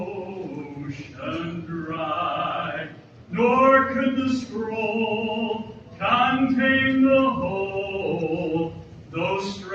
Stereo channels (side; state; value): both; identical; correlation 1.00